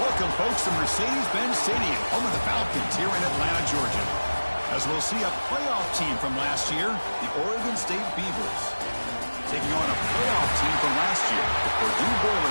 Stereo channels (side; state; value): both; inverted; correlation -1.00